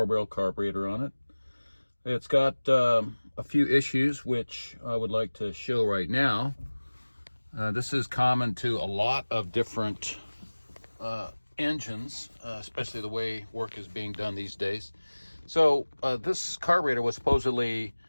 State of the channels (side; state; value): both; inverted; correlation -1.00